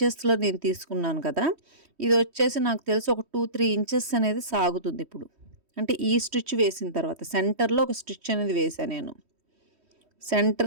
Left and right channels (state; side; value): late; left; 3.1 ms